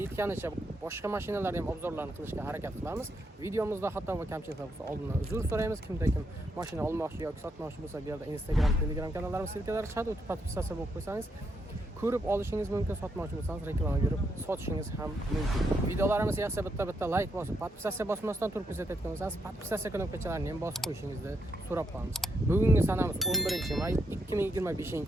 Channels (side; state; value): both; normal; correlation 0.79